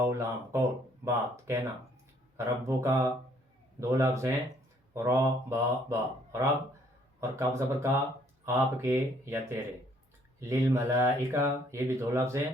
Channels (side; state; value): both; normal; correlation 0.64